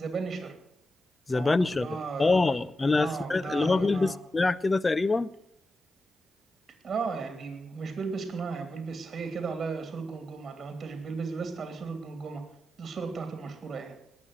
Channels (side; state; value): both; normal; correlation 0.91